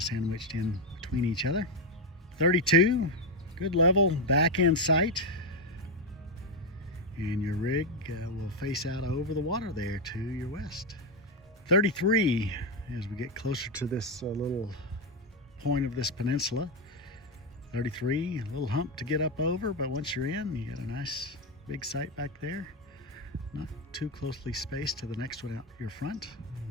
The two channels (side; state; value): both; normal; correlation 0.07